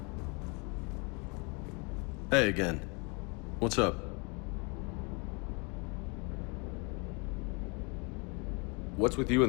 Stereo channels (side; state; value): right; quieter; 31.4 dB